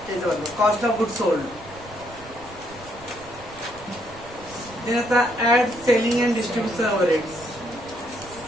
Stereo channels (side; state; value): right; noise; rumble, 19 dB below the sound